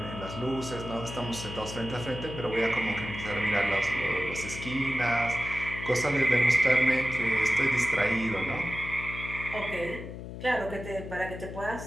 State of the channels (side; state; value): left; noise; hum, 10 dB below the sound